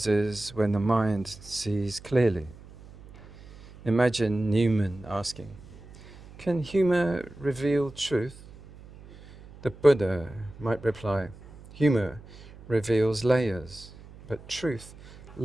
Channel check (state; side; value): noise; right; hum, 20 dB below the sound